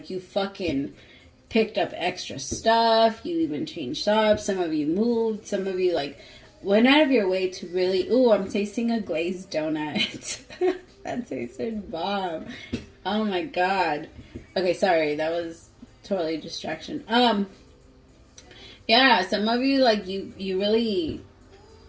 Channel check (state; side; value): identical; both; correlation 1.00